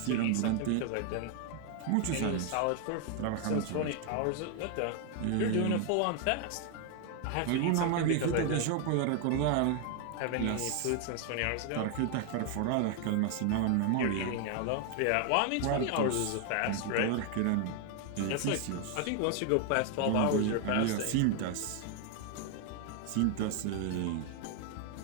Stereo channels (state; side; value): different; both; correlation 0.00